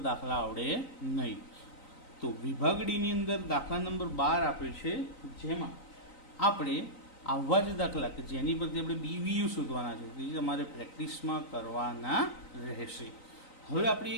દાખલા આવડે નહીં. તો વિભાગ ડીની અંદર દાખલા નંબર 12 આપ્યો છે, જેમાં આપણે આવા જ દાખલા કે જેની પરથી આપણે BVU શોધવાના છે તે તમારે પ્રેક્ટિસમાં કરવાના રહેશે. હવે આપણે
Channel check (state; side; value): late; right; 3.9 ms